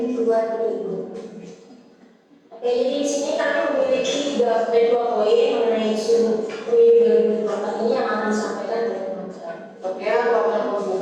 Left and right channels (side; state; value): both; identical; correlation 1.00